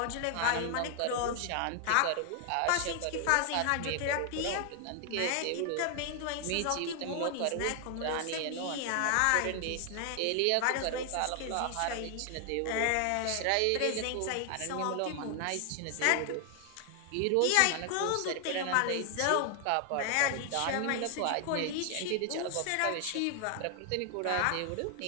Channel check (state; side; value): different; both; correlation 0.00